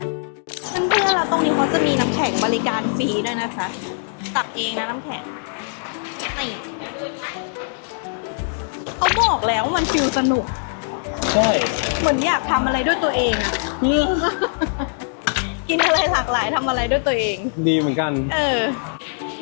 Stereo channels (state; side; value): silent; right; digital silence